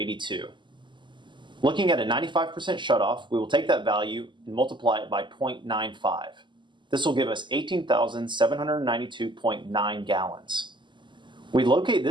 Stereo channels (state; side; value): late; left; 0.23 ms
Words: Looking at a 95% shutoff, we will take that value and multiply it by 0.95. This will give us 18,792.9 gallons. We locate